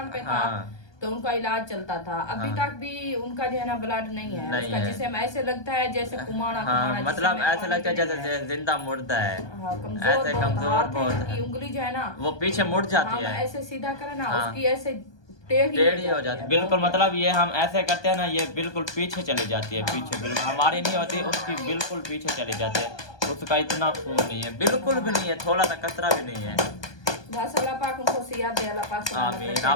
पे था हाँ तो उनका इलाज चलता था। अभी हाँ। तक भी उनका जो है ना ब्लड नहीं है नहीं उसका, है। जिसे ऐसे लगता है जैसे कुमाड़ा हाँ जिसे मतलब में ऐसा पानी लगता है भी नहीं जैसे जिंदा मुर्दा है। हाँ, कमजोर ऐसे बहुत कमजोर हाथ है बहुत इनकी, है, उंगली जो है ना वो पीछे मुड़ जाती हम है। ऐसे सीधा करें ना हाँ। उसकी ऐसे टेढ़ी टेढ़ी हो जाती है है बिल्कुल। बहुत मतलब ये हम ऐसे करते हैं ना, ये बिल्कुल पीछे चली जाती है। हाँ। पीछे बिल्कुल हमारी नहीं होती, उसकी बिल्कुल पीछे चली जाती है। उसका इतना खून नहीं है, बिल्कुल भी नहीं है, थोड़ा सा कतरा भी नहीं है। बस अल्लाह पाक उनको सियात दे, अल्लाह पाक सलामत आमीन। रखे।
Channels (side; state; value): right; late; 1.2 ms